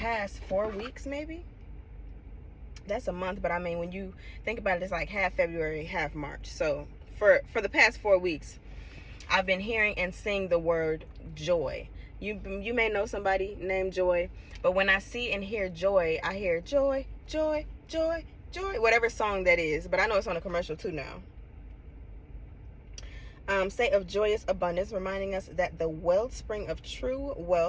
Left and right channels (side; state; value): both; identical; correlation 1.00